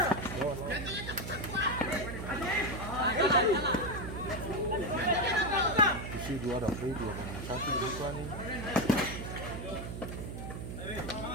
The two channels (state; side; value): noise; right; hum, 7 dB below the sound